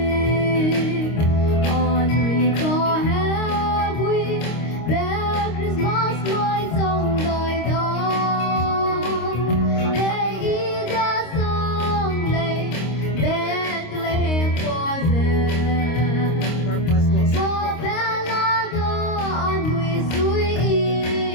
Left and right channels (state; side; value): late; right; 26 ms